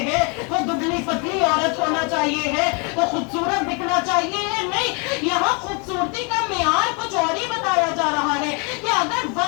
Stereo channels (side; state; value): right; quieter; 33.6 dB